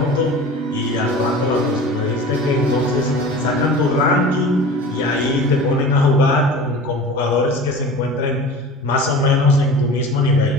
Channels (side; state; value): both; normal; correlation 0.37